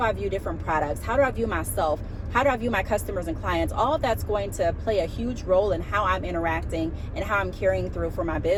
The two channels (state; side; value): identical; both; correlation 1.00